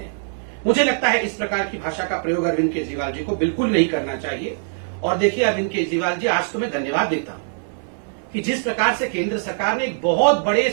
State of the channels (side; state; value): left; silent; 62 dB below the other